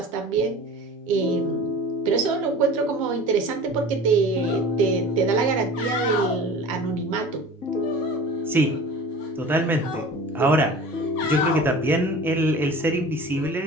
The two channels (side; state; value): both; normal; correlation 0.40